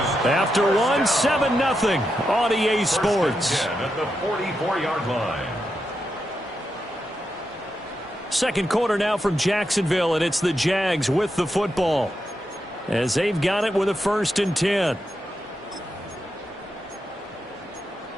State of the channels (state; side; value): normal; both; correlation 0.86